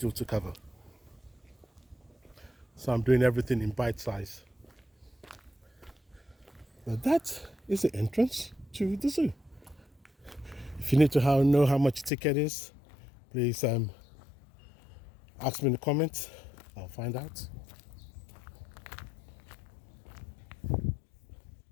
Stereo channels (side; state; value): right; drops out; at 12.1 s